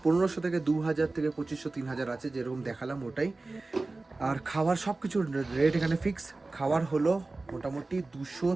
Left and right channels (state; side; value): quieter; left; 3.3 dB